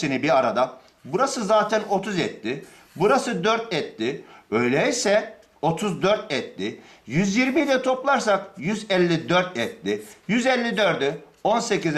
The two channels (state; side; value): identical; both; correlation 1.00